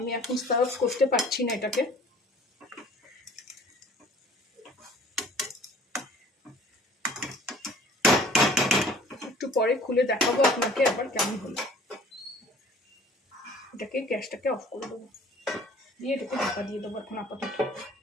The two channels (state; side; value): normal; both; correlation 0.51